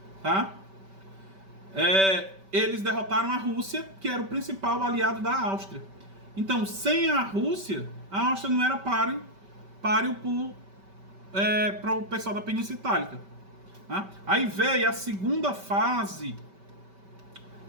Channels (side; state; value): left; late; 5.2 ms